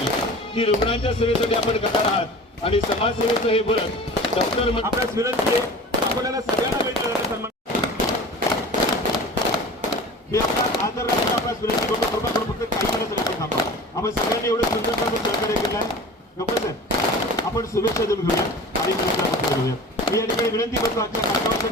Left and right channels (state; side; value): normal; both; correlation 0.38